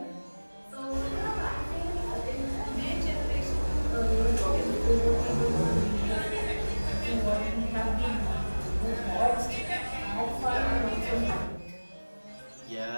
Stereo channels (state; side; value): inverted; both; correlation -1.00